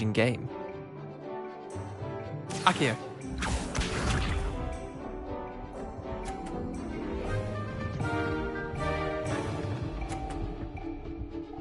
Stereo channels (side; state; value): both; identical; correlation 1.00